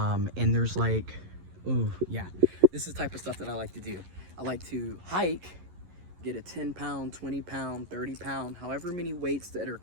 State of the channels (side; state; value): left; late; 11 ms